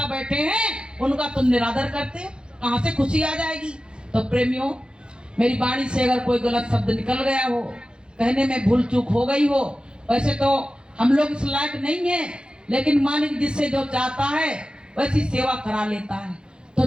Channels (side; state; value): left; late; 0.050 ms